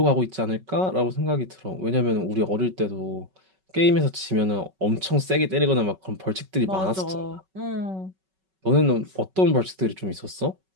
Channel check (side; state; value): left; late; 5.3 ms